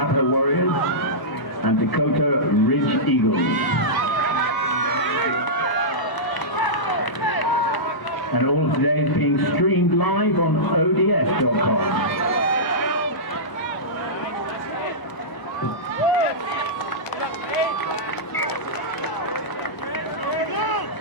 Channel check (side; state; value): right; late; 1.0 ms